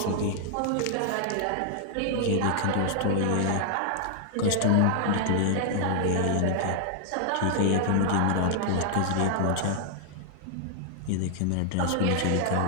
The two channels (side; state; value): both; different; correlation 0.00